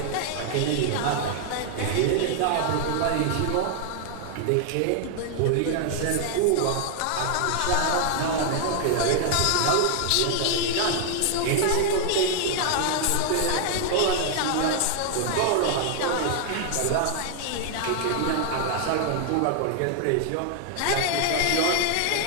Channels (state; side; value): different; both; correlation 0.00